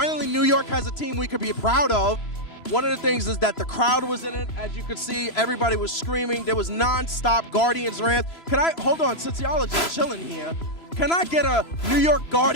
New York has a team we could be proud of. One of the things is that the crowd was in it. As you could see, everybody was screaming. There was non-stop Guardians rants. Hold on, since y'all are just chilling here, can I get a New York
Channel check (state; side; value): late; right; 3.0 ms